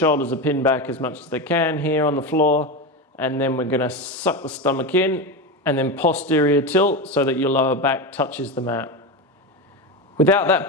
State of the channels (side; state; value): both; normal; correlation 0.18